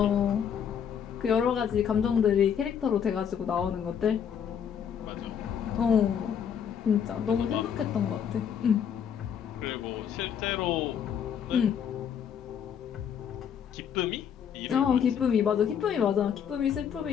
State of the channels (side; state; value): right; quieter; 8.1 dB